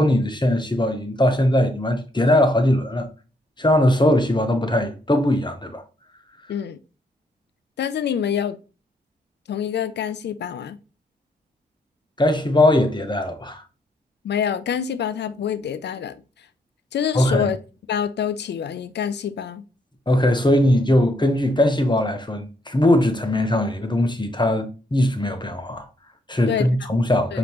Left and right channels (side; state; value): both; normal; correlation 0.72